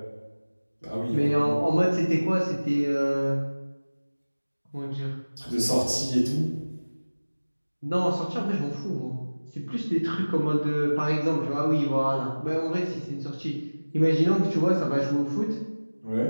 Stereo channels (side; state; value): both; inverted; correlation -1.00